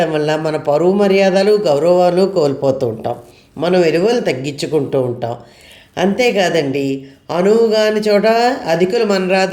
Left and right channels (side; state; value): both; identical; correlation 1.00